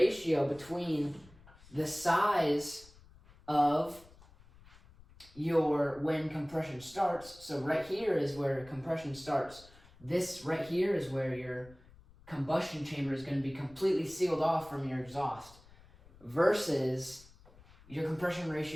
between the size of when compression starts. So right here is where compression starts. This right here is where your combustion chamber is going to be completely sealed off from your exhaust, versus your compression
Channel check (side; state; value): left; noise; rumble, 24 dB below the sound